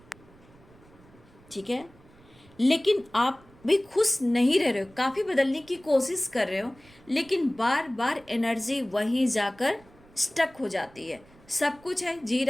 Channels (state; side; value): noise; right; rumble, 26 dB below the sound